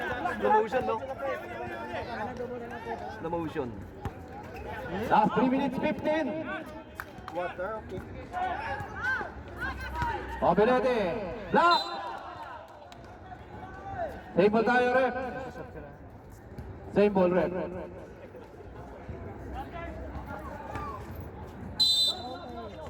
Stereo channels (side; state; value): both; identical; correlation 1.00